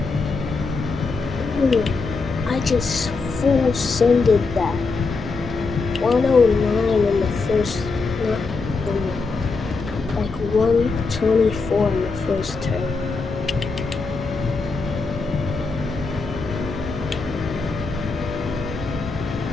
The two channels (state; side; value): quieter; right; 4.2 dB